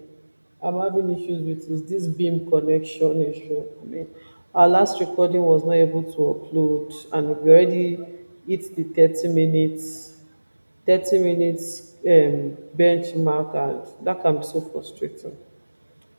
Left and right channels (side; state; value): both; inverted; correlation -1.00